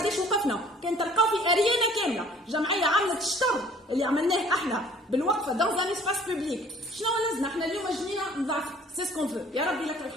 وقفنا. كان تلقاو في اريانا كامله جمعيه عملت الشطر اللي عملناه احنا بالوقفه دون ان اسباس بوبليك. شنو لازمنا احنا اليوم جنينا نضعف سي سكون فو يا ربي لك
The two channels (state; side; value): normal; both; correlation 0.54